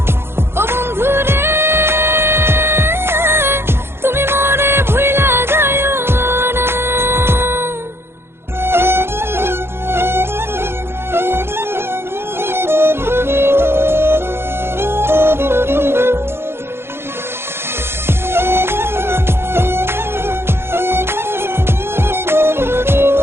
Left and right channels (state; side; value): late; left; 0.12 ms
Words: ও বন্ধু রে তুমি মরে ভুইলা যাও না।